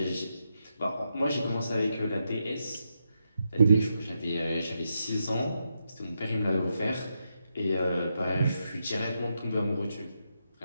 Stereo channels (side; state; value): both; inverted; correlation -0.84